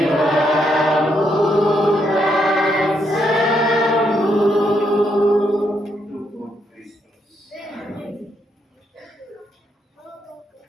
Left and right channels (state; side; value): normal; both; correlation 0.77